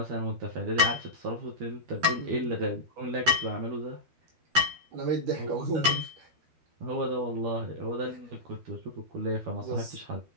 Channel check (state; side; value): late; left; 12 ms